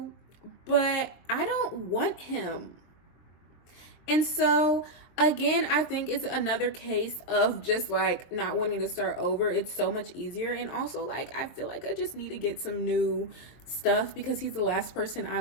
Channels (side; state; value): right; late; 23 ms